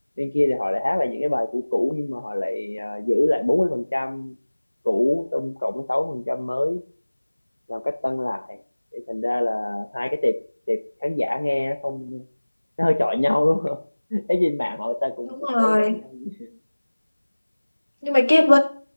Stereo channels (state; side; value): inverted; both; correlation -1.00